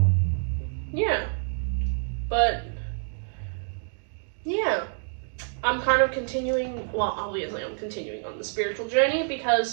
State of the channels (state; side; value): silent; left; digital silence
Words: Yeah. But, yeah. I'm kind of continuing, well, obviously I'm continuing on the spiritual journey,